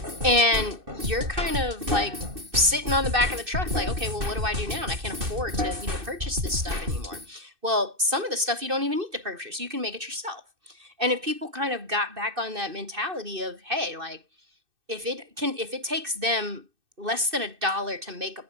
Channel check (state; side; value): late; left; 2.6 ms